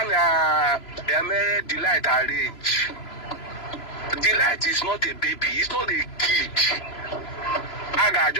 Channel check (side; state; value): right; late; 3.0 ms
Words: Delight arrange. Delight is not a baby, it's not a kid. I got